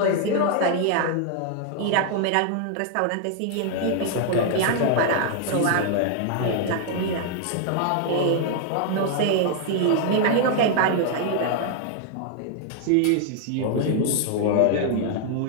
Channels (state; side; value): different; both; correlation 0.00